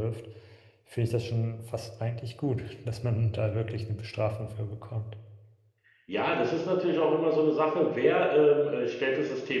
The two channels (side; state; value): both; identical; correlation 1.00